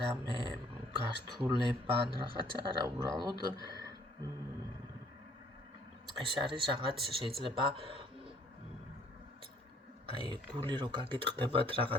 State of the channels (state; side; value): normal; both; correlation 0.61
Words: რამე გართულება ან რაღაცა არა, უბრალოდ ეს არის რაღაც შეიძლება გული რო გაგიტყდებათ